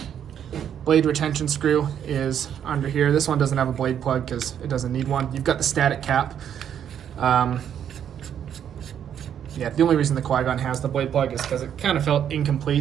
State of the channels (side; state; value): left; quieter; 9.2 dB